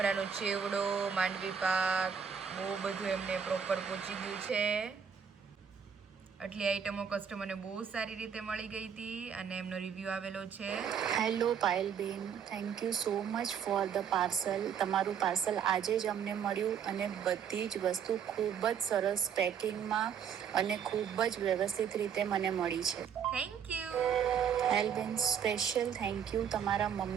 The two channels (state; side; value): quieter; left; 7.6 dB